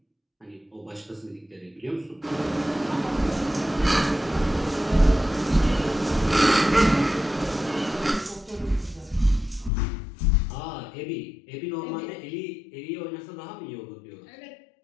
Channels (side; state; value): right; drops out; at 9.7 s